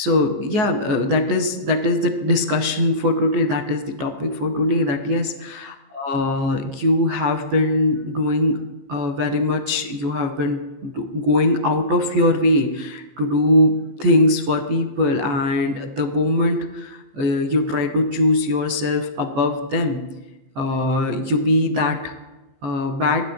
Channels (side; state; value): left; late; 15 ms